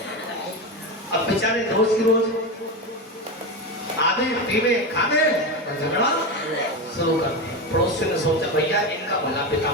अब बेचारे रोज की रोज आधे पीवे खावे और झगड़ा शुरू कर दिया। पड़ोसी ने सोचा भैया इनका भला पिता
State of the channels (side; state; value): both; normal; correlation 0.17